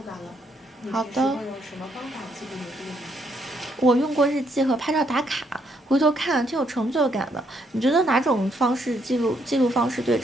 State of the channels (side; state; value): both; normal; correlation 0.73